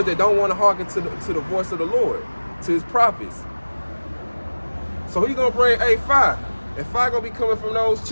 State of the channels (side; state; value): both; inverted; correlation -1.00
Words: that don't want to hearken to the voice of the Lord, to his prophets. So he gonna bring a fire, and fire gonna be coming from those